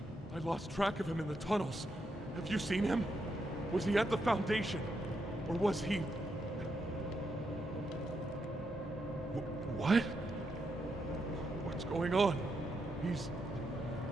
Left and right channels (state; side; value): noise; right; hum, 25 dB below the sound